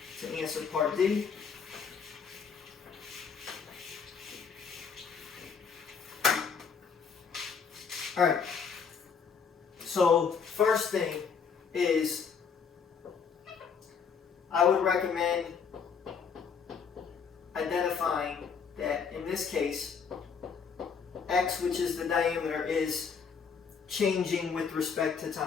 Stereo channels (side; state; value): right; quieter; 6.2 dB